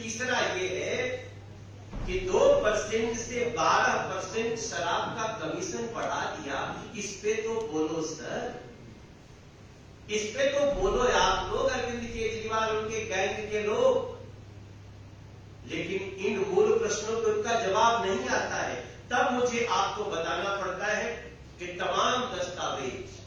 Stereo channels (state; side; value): identical; both; correlation 1.00